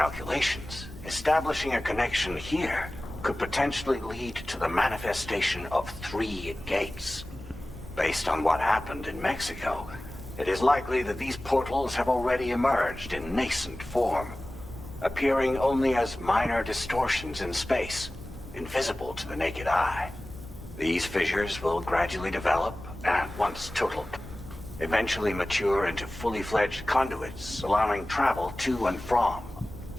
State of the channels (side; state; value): both; normal; correlation 0.97